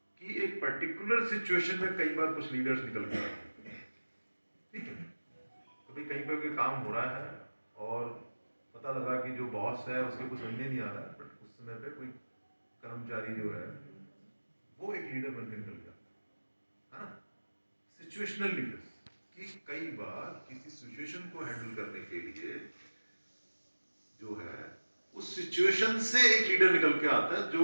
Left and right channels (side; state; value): both; inverted; correlation -1.00